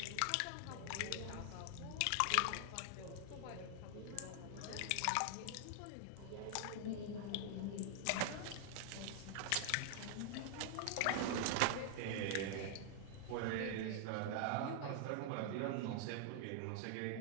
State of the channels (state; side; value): different; both; correlation 0.00